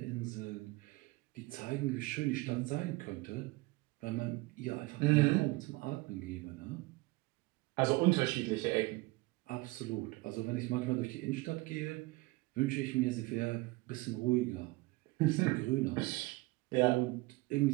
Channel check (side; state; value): left; quieter; 22.6 dB